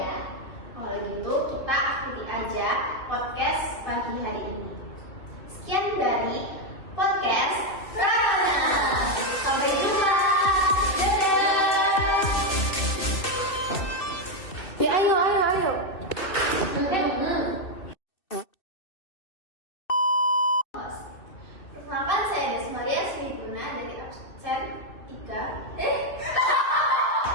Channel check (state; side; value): late; right; 2.6 ms